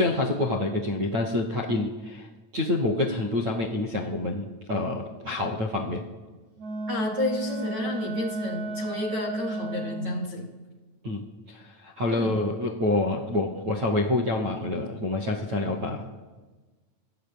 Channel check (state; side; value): late; left; 9.2 ms